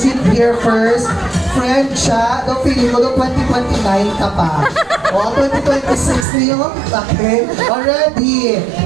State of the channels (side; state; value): left; drops out; at 6.2 s